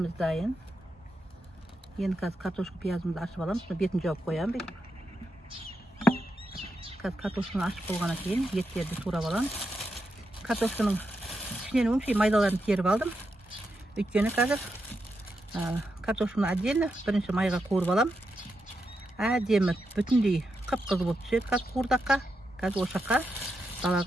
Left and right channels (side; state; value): both; normal; correlation 0.85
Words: dayın. Yeni kartoşku piyazımızı açıp alalım. Sonra betini cevap koyalım. Kartoşkunu açıp olgana keyin etlerdi tuğrap alalım. Kartoşkunun içine maydalarını terip aldım. Ötkeni қазір kartoşkunu отдельно birinchi mayga ko'rib alam. Әдемі бүтіндей қып-қызыл болып түседі. Қазір қуырдаққа, қазір осы жаққа